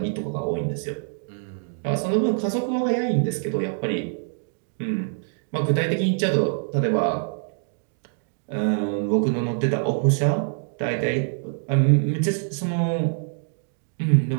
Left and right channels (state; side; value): silent; left; digital silence